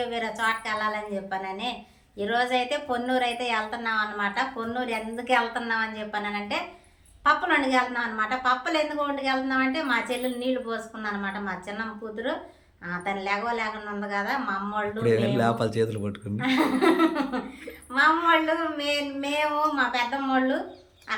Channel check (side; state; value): both; identical; correlation 1.00